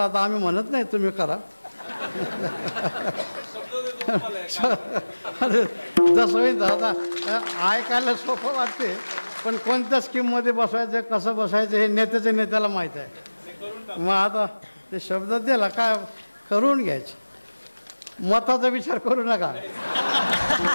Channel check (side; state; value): both; inverted; correlation -1.00